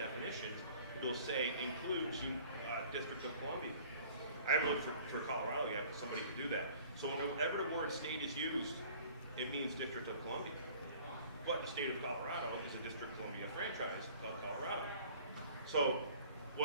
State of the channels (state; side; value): inverted; both; correlation -0.50